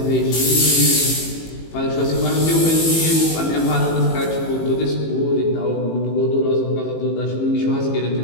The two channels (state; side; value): late; right; 18 ms